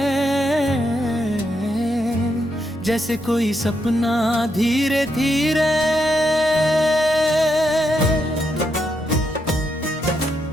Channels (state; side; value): normal; both; correlation 0.81